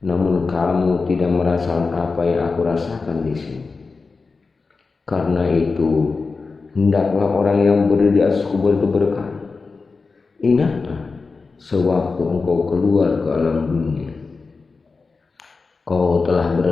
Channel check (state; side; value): quieter; right; 4.3 dB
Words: Namun kamu tidak merasakan apa yang aku rasakan di sini. Karena itu, hendaklah orang yang berdiri di atas kubur itu berkata, ingatlah sewaktu engkau keluar ke alam dunia, kau telah